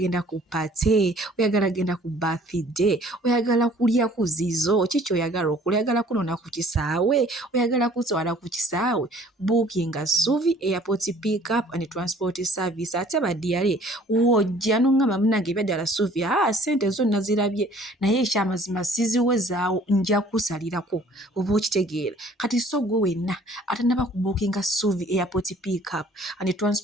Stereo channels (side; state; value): both; normal; correlation 0.54